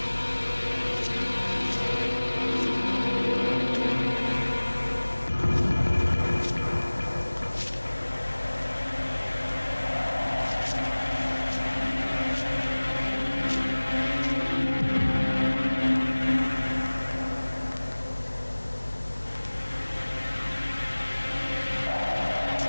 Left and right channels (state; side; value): inverted; both; correlation -1.00